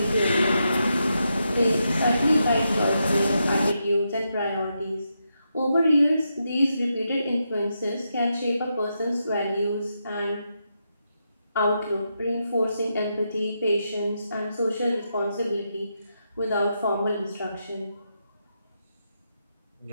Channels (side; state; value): both; inverted; correlation -0.84